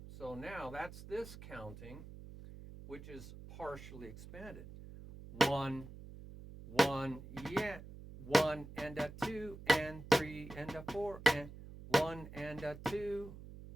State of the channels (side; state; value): right; noise; hum, 14 dB below the sound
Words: So now that's this counting, which is partially expanded. 1, 1, yeah. 1 and a 2 and 3 and a 4 and 1 and a 2